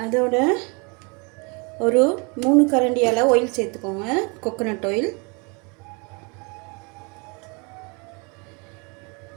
அதோட ஒரு 3 கரண்டி அளவு ஆயில் சேர்த்துக்கோங்க. Coconut oil.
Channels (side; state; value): left; quieter; 31.4 dB